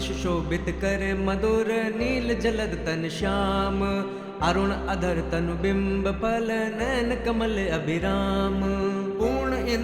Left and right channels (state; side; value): identical; both; correlation 1.00